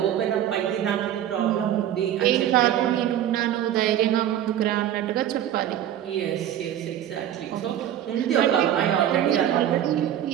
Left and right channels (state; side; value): quieter; left; 11.1 dB